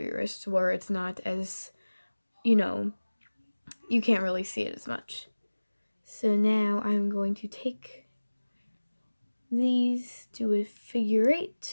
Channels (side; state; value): both; inverted; correlation -1.00